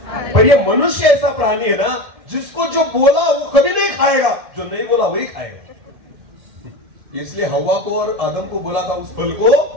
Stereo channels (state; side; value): late; left; 1.7 ms